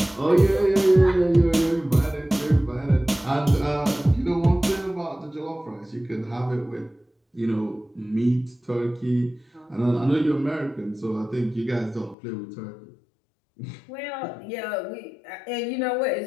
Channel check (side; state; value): right; drops out; at 12.2 s